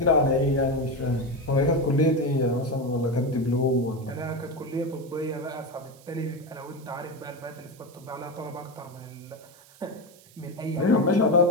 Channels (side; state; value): right; noise; hiss, 25 dB below the sound